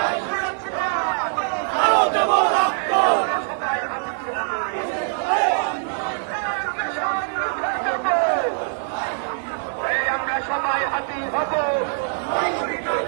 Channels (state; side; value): silent; left; 61 dB below the other